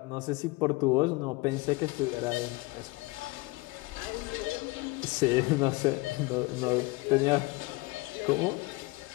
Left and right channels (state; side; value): quieter; right; 23.4 dB